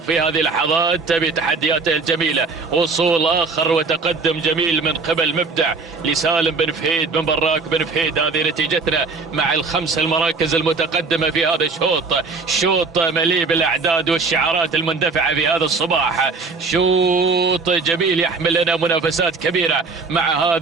في هذه اللحظات بتحدياته الجميلة. وصول آخر وتقدم جميل من قبل مبدع لسالم بن فهيد بن براك بن فهيد. هذه نتيجتنا مع الخمس المراكز المتقدمة في هذا الشوط. شوط مليء بالأعداد والشعارات المندفعة في هذا الصباح. شوط جميل يحمل لنا منافسات كبيرة مع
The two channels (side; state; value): left; quieter; 4.3 dB